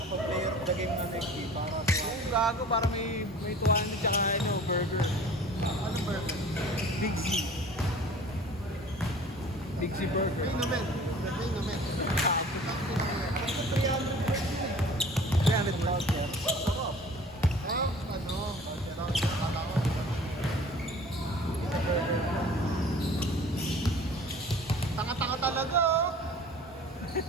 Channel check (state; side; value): normal; both; correlation 0.46